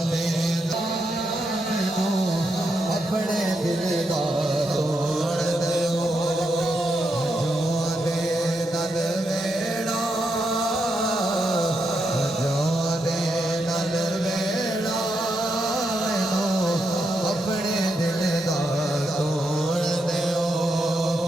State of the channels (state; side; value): normal; both; correlation 0.82